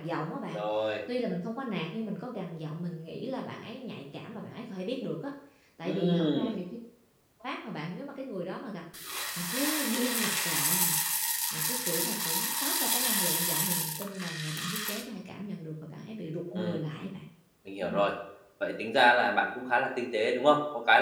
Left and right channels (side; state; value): both; identical; correlation 1.00